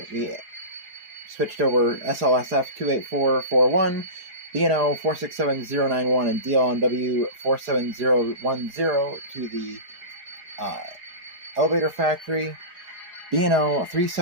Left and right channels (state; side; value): late; left; 4.9 ms